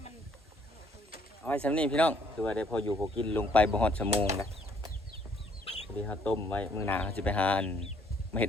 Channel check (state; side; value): normal; both; correlation 0.65